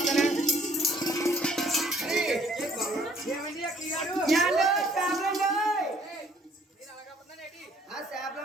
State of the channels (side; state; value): both; normal; correlation 0.60